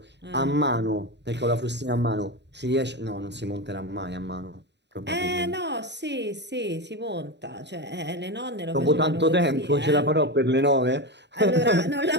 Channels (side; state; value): left; late; 0.51 ms